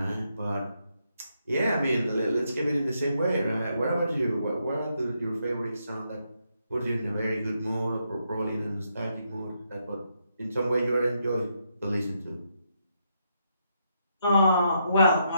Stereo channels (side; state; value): both; inverted; correlation -0.78